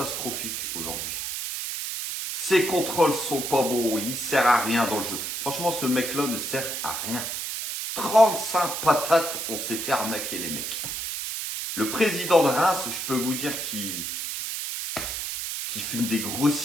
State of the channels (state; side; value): noise; right; hiss, 4 dB below the sound